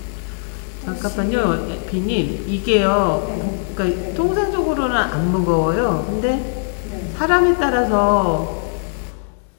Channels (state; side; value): silent; right; 63 dB below the other